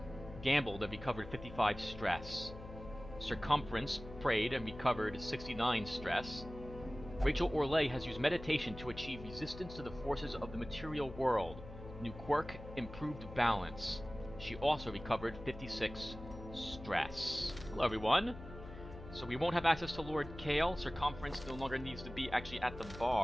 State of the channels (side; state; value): left; noise; hum, 13 dB below the sound